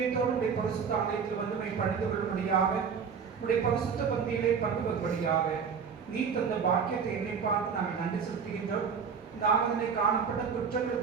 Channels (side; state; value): left; quieter; 6.4 dB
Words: உடைய பரிசுத்த ஆலயத்தில் வந்து பணிந்து கொள்ளும்படியாக, உடைய பரிசுத்த பந்தியிலே பங்கு பெறும்படியாக நீ தந்த பாக்கியத்தை என்னை பார்த்து நாங்கள் நன்றி செலுத்துகின்றோம். இந்த ஆராதனை காணப்பட்ட